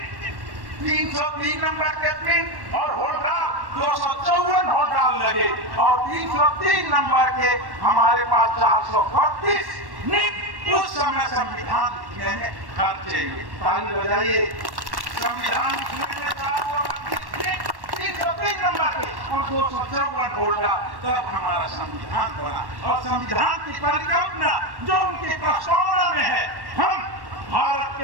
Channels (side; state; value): left; late; 1.1 ms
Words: 303 नंबर के पिन और होल्डाल 254 होल्डाल लगे और 303 नंबर के हमारे पास 432 नित उस समय संविधान लिखने में खर्चे हुए। ताली बजाइए। संविधान लिखने में 303 नंबर के और 254 होल्डाल, तब हमारा संविधान बना। और संविधान की परिकल्पना जो उनकी प्रस्तावना में है, हम भारत